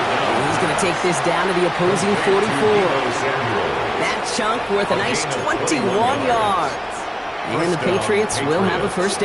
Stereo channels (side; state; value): both; identical; correlation 1.00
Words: And he's going to take this down to the opposing 44. That chunk worth a nice 21 yards. And the Patriots will have a 1st